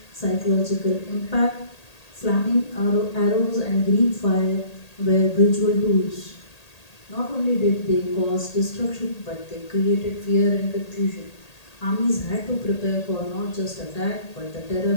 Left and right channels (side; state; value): right; late; 1.8 ms